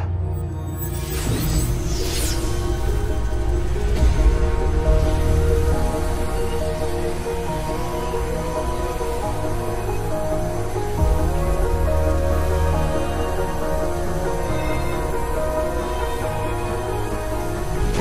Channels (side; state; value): both; identical; correlation 1.00